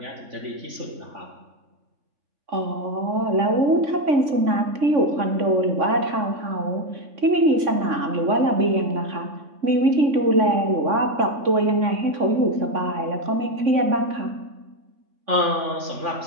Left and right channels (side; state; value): left; late; 3.5 ms